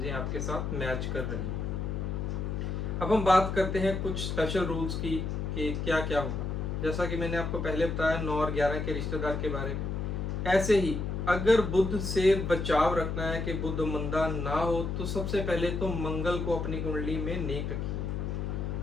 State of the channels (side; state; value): left; noise; hum, 2 dB below the sound